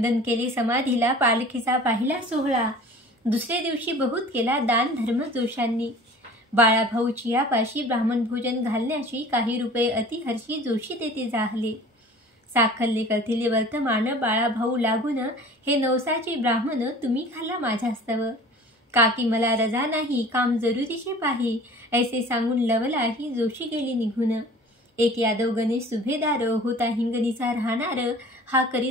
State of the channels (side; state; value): both; normal; correlation 0.44